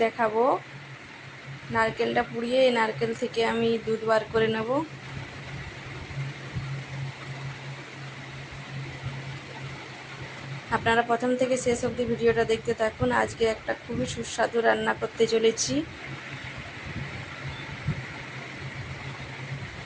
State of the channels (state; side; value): identical; both; correlation 1.00